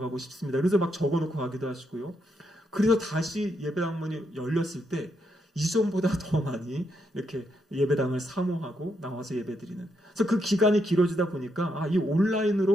싶습니다. 그래서 막 적어놓고 가기도 하시고요. 그래서 다시 예배당 문이 열렸을 때 이전보다 더 많이 이렇게 예배당을 사모하고 나와서 예배드리는. 그래서 그 기간이 길어지다 보니까 이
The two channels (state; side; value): normal; both; correlation 0.79